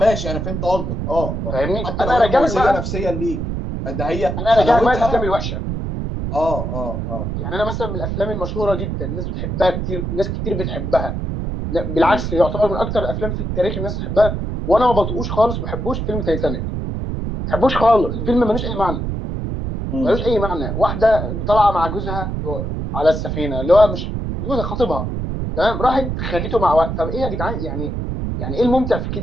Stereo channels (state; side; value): noise; right; rumble, 3 dB below the sound